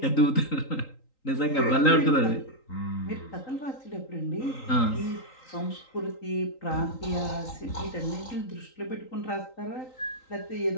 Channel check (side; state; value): right; late; 3.9 ms